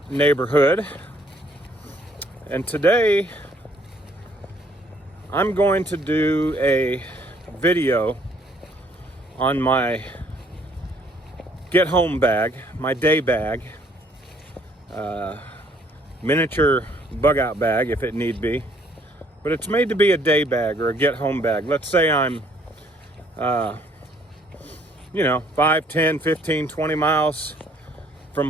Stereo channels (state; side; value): normal; both; correlation 0.63